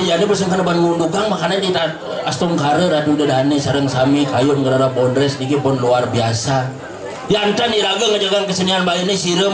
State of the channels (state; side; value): identical; both; correlation 1.00